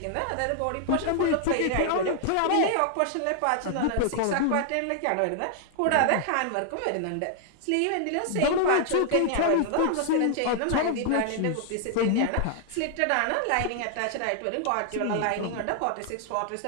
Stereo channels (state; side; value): different; both; correlation 0.00